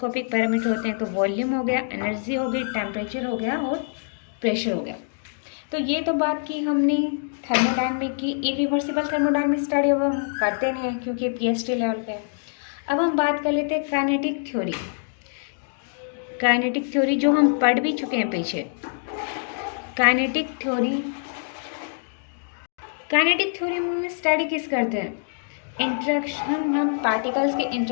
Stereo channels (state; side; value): silent; right; digital silence